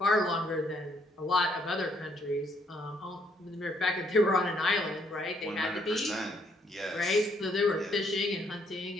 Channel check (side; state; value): both; normal; correlation 0.69